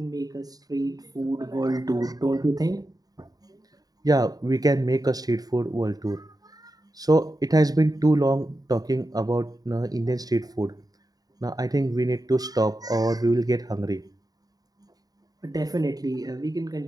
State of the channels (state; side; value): late; left; 0.18 ms